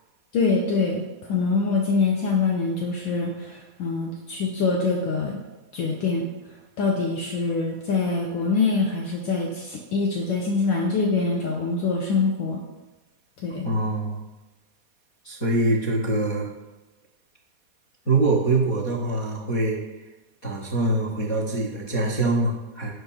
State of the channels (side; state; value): right; late; 4.2 ms